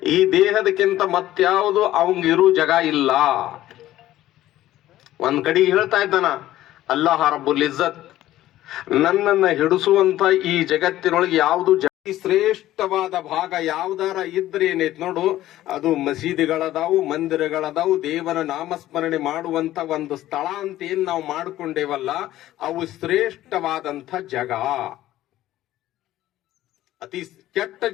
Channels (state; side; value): quieter; right; 14.4 dB